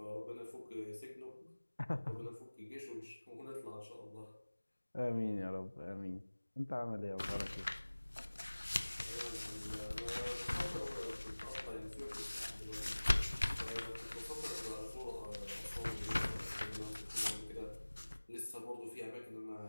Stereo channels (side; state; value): both; inverted; correlation -1.00